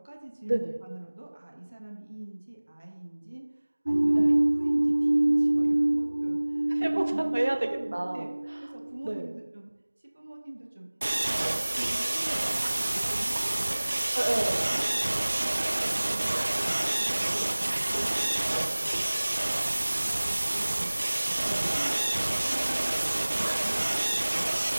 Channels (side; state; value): both; inverted; correlation -1.00